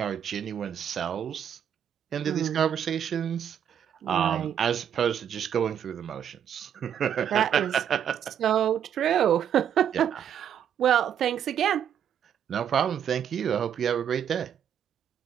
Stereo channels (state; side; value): quieter; left; 9.0 dB